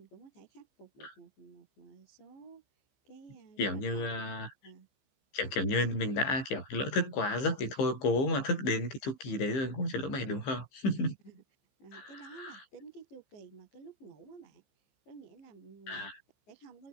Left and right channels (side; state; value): right; late; 15 ms